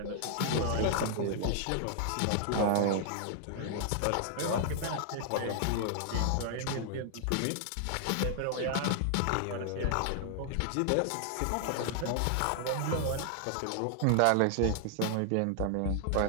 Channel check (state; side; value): different; both; correlation 0.00